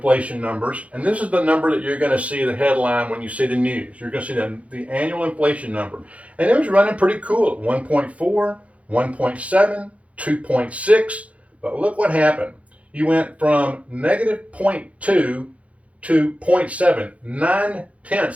numbers, and this is the number that you're going to see the headline when you see the news. You're going to see the annual inflation number. And it was running pretty cool at 1.4, 1.7, 2.6. But look what happened. You went from negative 0.2 to 0.7,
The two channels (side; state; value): left; late; 0.065 ms